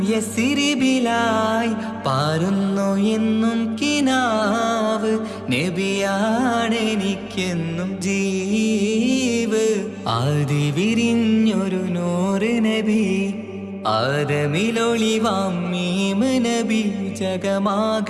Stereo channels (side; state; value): both; identical; correlation 1.00